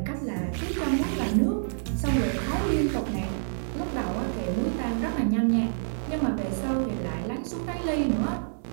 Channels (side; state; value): left; silent; 60 dB below the other